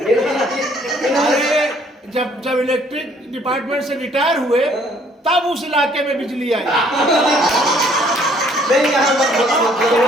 जब इलेक्ट्रिक डिपार्टमेंट से रिटायर हुए तब उस इलाके में बिजली आई। नहीं यहाँ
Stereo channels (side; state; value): both; normal; correlation 0.62